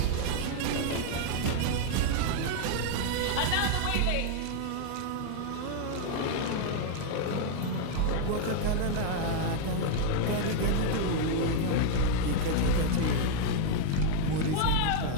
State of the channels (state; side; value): different; both; correlation -0.01